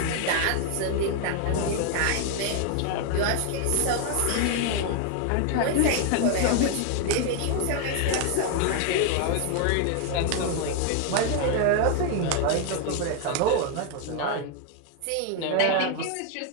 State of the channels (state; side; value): different; both; correlation 0.00